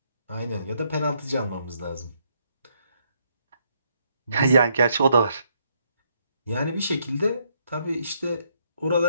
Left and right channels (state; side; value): inverted; both; correlation -0.74